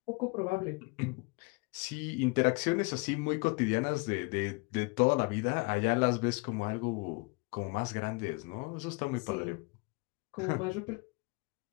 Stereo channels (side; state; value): right; quieter; 29.2 dB